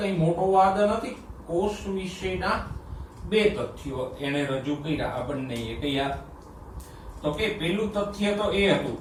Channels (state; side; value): identical; both; correlation 1.00